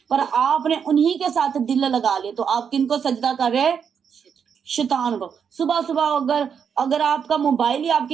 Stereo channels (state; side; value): quieter; left; 7.1 dB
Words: पर आपने उन्हीं के साथ दिल लगा लिए, तो आप किनको सजदा कर रहे हैं? शैतान को। सुबह सुबह अगर आपका मोबाइल ही